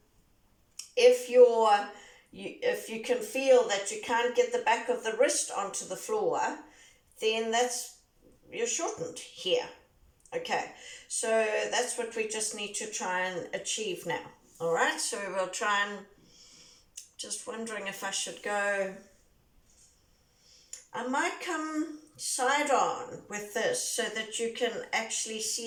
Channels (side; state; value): both; identical; correlation 1.00